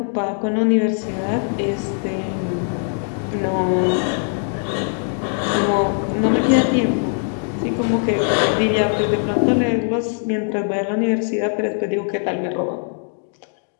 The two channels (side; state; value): right; silent; 55 dB below the other